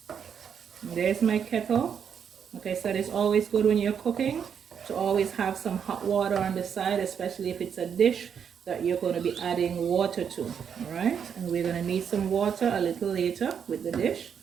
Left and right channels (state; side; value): quieter; left; 7.6 dB